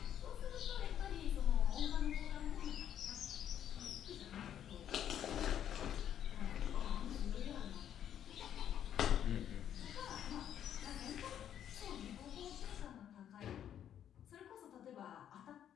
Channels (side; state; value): right; quieter; 10.0 dB